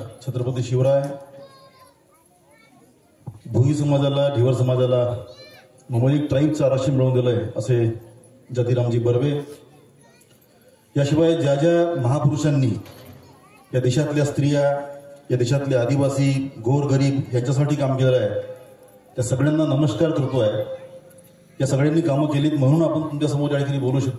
छत्रपती शिवराय, भोई समाजाला, ढिवर समाजाला ममलिक ट्राईबचं आरक्षण मिळवून दिलंय असे जतीरामजी बर्वे, याशिवाय ज्या ज्या महापुरुषांनी या देशातल्या स्त्रिया, या देशातले आदिवासी, गोरगरीब यांच्यासाठी काम केलं आहे, त्या सगळ्यांना नमस्कार करतोय. या सगळ्यांनी कामं केलीत म्हणून आपण तुमच्यासमोर या ठिकाणी बोलू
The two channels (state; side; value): identical; both; correlation 1.00